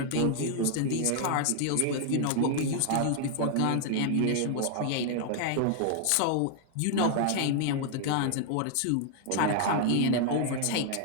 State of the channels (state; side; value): different; both; correlation 0.00